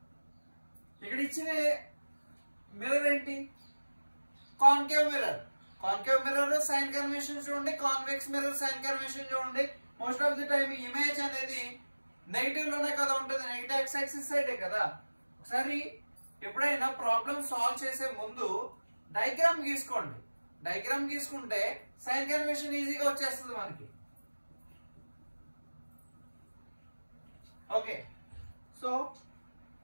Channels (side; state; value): both; inverted; correlation -1.00